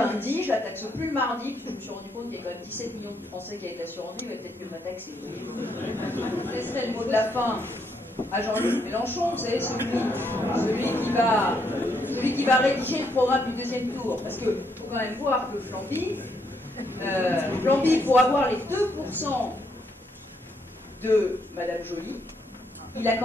je la taxe plus le mardi, puis je me suis rendu compte qu'il y a quand même 17 millions de Français qui avaient l'assurance vie, mais peut-être mieux ma taxe. Je laisserai le mot de la fin à Jean-Luc Mélenchon, vous savez, celui qui va rédiger le programme du deuxième tour, parce qu'il faut quand même voir que Flamby, pour avoir les 2% de Madame Joly, il a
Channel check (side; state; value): both; normal; correlation 0.75